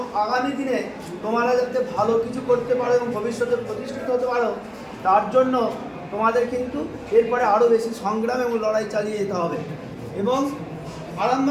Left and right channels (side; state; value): both; identical; correlation 1.00